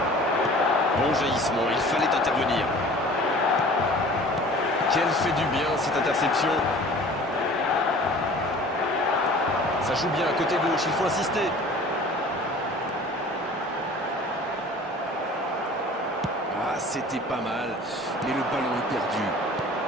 Bon jaillissement, il fallait intervenir. Quelle fait du bien cette interception. Ça joue bien à côté gauche, il faut insister. Ah, c'était pas mal, mais le ballon est perdu.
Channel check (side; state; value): both; normal; correlation 0.46